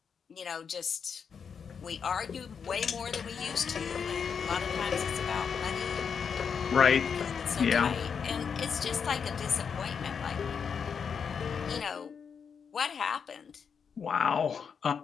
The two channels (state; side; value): quieter; right; 6.5 dB